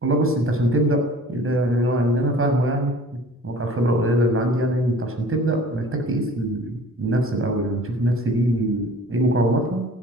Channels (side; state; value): both; normal; correlation 0.47